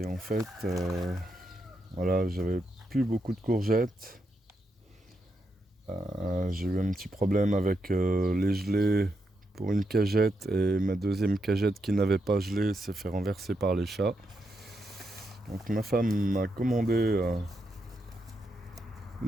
en fait, voilà, j'avais plus beaucoup de courgettes. J'ai eu un petit problème avec les gelées pour une cagette et ma deuxième cagette qui n'avait pas gelé s'est fait renverser par les chats. Donc ma femme m'a commandé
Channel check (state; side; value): normal; both; correlation 0.83